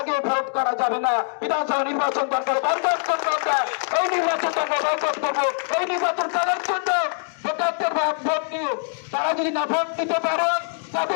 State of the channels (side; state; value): right; silent; digital silence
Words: আগে ভোট করা যাবে না। বিধানসভা নির্বাচন দরকার, বয়কট করবো আমরা, এই নির্বাচন দরকার বয়কট করবো। এই নির্বাচন করার জন্য ভোটারদের ভোট নিয়ে তারা যদি না ভোট দিতে পারে,